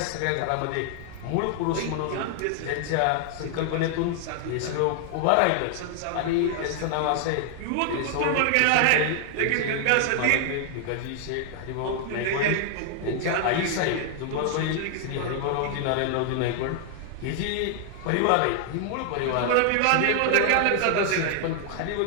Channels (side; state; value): both; different; correlation 0.00